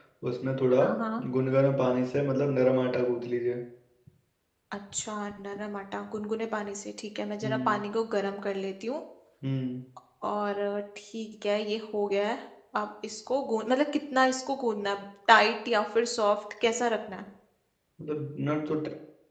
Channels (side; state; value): both; identical; correlation 1.00